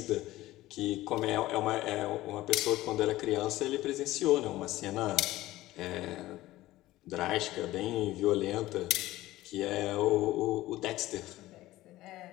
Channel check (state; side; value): quieter; right; 16.6 dB